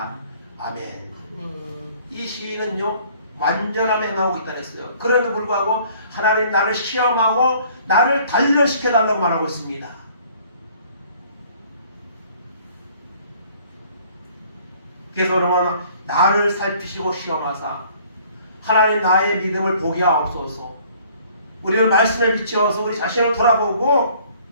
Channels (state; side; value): inverted; both; correlation -0.57